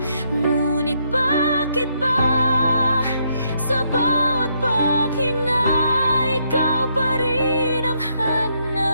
ngunit bakit ba sa bawat paghinga ikaw pa rin ang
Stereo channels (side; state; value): both; inverted; correlation -0.75